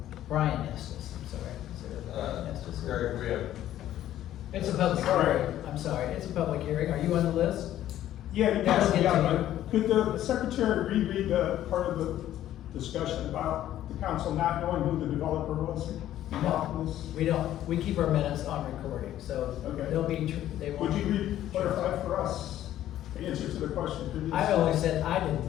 Brian Estes, I'm sorry. Is there a Estes? Gary, we have. It's a public hearing, I'm sorry, it's a public hearing, are you on the list? Yeah, That'll yes, get yeah, to but could the secretary reread the part of the discussion about the council not knowing who the developer was? No, we don't, we keep our minutes on recording, so Okay. they'll be, they Would won't. you clarify for us the answer to the question? Could you I say- only said I didn't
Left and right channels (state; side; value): quieter; right; 12.6 dB